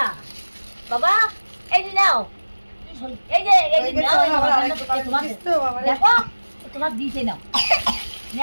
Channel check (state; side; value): inverted; both; correlation -1.00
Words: বাবা এই যে নাও, এই যে নাও, দেখো তোমার দিতে নাও,